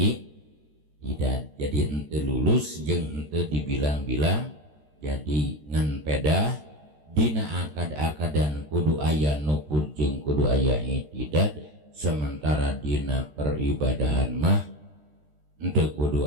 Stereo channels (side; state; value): left; late; 13 ms